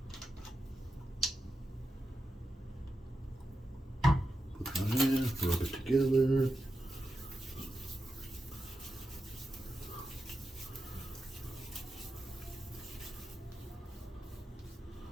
Put that in, rub it together.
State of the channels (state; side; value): normal; both; correlation 0.89